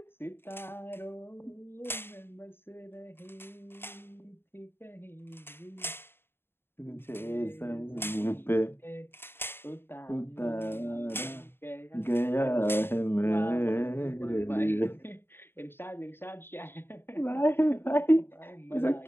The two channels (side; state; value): right; late; 0.11 ms